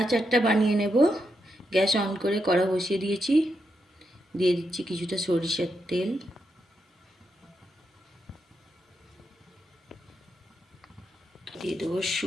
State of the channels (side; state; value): both; normal; correlation 0.83